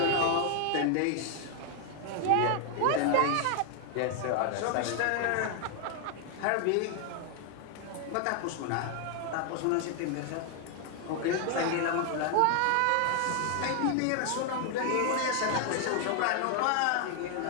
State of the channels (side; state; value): both; different; correlation 0.00